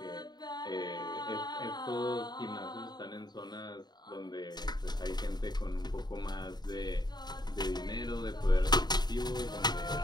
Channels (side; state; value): right; late; 0.20 ms